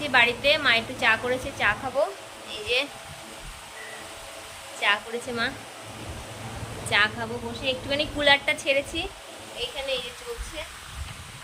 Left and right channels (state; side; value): identical; both; correlation 1.00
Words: বাড়িতে। মা একটু চা করেছে, চা খাবো। এই যে চা করেছে মা, চা খাবো বসে। একটুখানি কুলারটা ছেড়েছি এইখানে, এই যে চলছে,